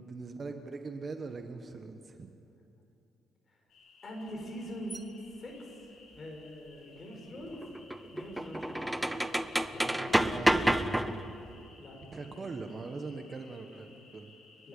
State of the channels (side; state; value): both; normal; correlation 0.95